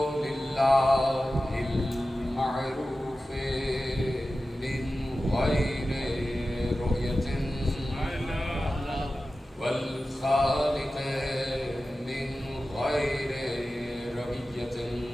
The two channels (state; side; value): normal; both; correlation 0.94